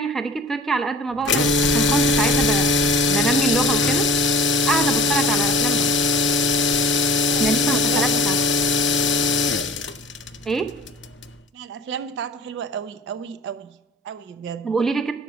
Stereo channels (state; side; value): normal; both; correlation 0.44